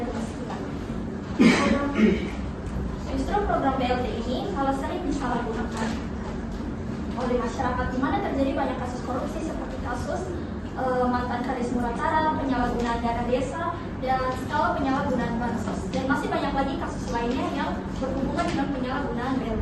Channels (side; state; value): both; identical; correlation 1.00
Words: kemiskinan. Justru program BLT ini kalau sering disalahgunakan oleh masyarakat, di mana terjadi banyak kasus korupsi seperti kasus mantan Kadis Murakaran, penyalahgunaan dana desa, dan skala penyalahgunaan bansos, dan masih banyak lagi kasus lainnya yang berhubungan dengan penyalahgunaan